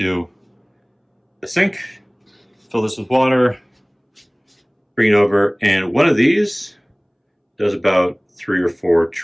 the sink, fill this with water, bring it over, and one of these does about 3 or 4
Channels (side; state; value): both; identical; correlation 1.00